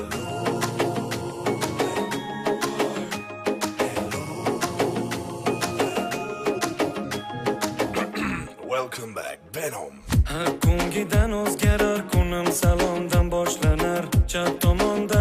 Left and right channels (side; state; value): both; identical; correlation 1.00